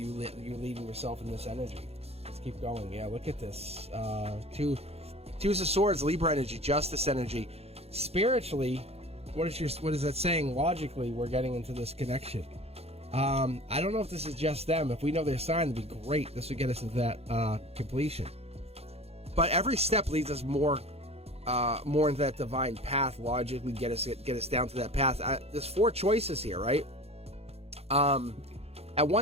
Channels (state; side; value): late; left; 0.29 ms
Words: yourself in this energy. Let's keep going. Yeah, look at this. Twos of Swords, Libra energy, Justice energy. Spiritually, what is that saying? Logically, we're getting into this connection. I don't know if this is just them. If we know their sign, it'd be great. This would get us into that completion. But every step leads us more into that divine path. Logically, get us down to that path. There's 4 choices here, right? At